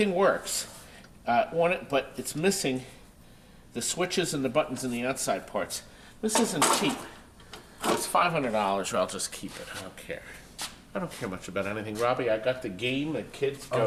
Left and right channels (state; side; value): identical; both; correlation 1.00